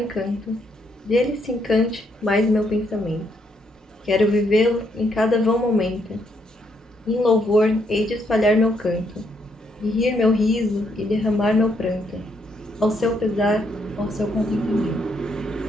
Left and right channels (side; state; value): both; normal; correlation 0.75